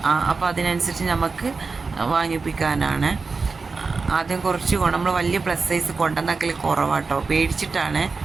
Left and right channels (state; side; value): quieter; left; 4.4 dB